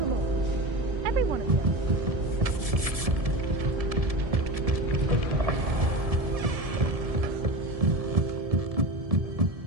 all. Every one of them.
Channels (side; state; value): left; late; 1.7 ms